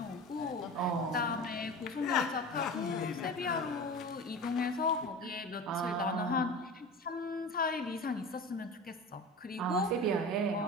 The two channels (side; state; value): both; normal; correlation 0.32